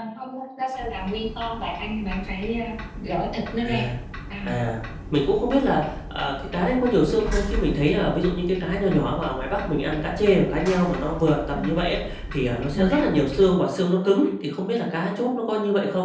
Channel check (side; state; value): both; identical; correlation 1.00